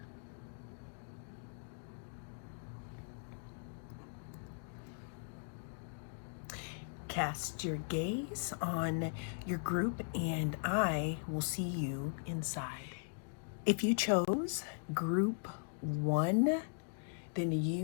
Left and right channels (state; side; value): silent; right; digital silence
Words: cast your gaze on your group and I will see you inside. If you chose group 1, then